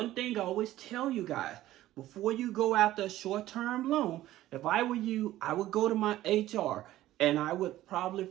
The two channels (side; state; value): left; quieter; 14.8 dB